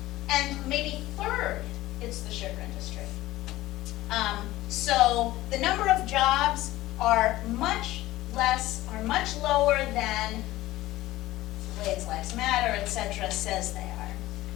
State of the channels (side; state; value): right; quieter; 16.6 dB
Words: And maybe third, it's the sugar industry. So the number of jobs are much lower than Glades Lives Matter, etc. says they are.